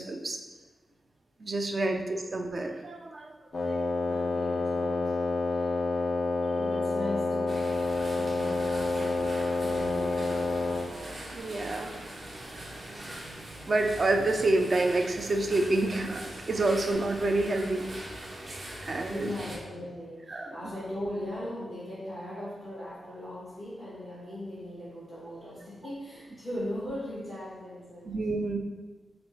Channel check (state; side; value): normal; both; correlation 0.88